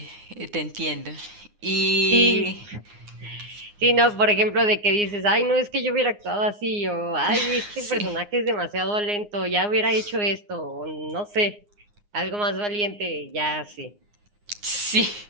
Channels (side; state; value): left; late; 9.7 ms